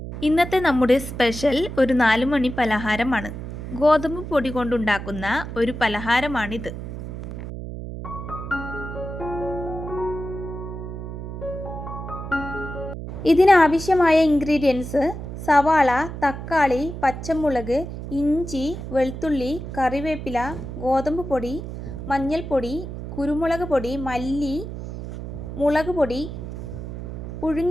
ഇന്നത്തെ നമ്മുടെ സ്പെഷ്യൽ ഒരു 4 മണി പലഹാരമാണ്. ഗോതമ്പ് പൊടി കൊണ്ടുണ്ടാക്കുന്ന ഒരു പലഹാരമാണിത്. ഇതിനാവശ്യമായ ഇൻഗ്രീഡിയൻസ് സവാള, തക്കാളി, പച്ചമുളക്, ഇഞ്ചി, വെളുത്തുള്ളി, കറിവേപ്പില, ഗോതമ്പ് പൊടി, മഞ്ഞൾപ്പൊടി, കുരുമുളക് പൊടി, മല്ലി, മുളക് പൊടി,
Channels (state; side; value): noise; right; hum, 8 dB below the sound